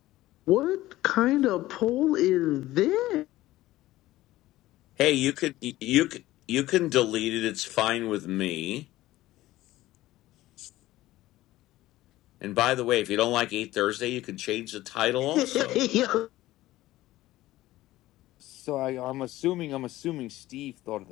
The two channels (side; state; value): right; quieter; 16.4 dB